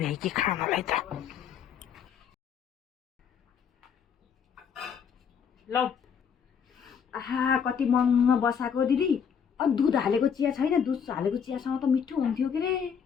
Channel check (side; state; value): right; quieter; 7.3 dB